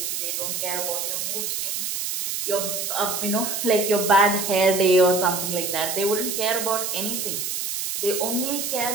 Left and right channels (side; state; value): right; noise; hiss, 2 dB below the sound